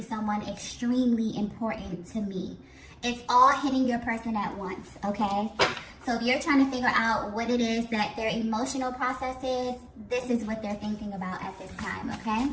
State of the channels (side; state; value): both; identical; correlation 1.00